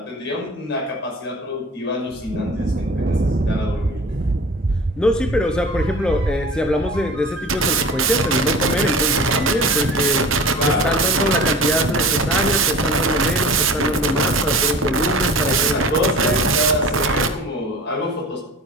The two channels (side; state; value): both; normal; correlation 0.40